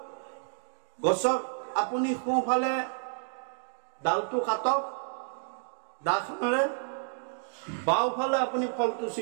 গছক আপুনি সোঁফালে ডালটো কাটক দাখনেৰে বাওঁফালে আপুনি ফলটো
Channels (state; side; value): silent; left; digital silence